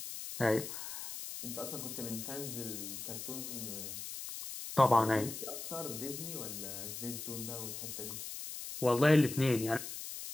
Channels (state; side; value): noise; left; hiss, 7 dB below the sound